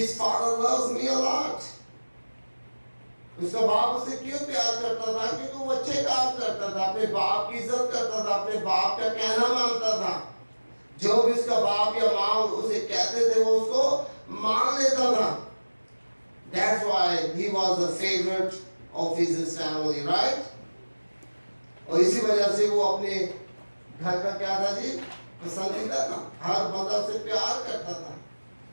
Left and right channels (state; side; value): inverted; both; correlation -1.00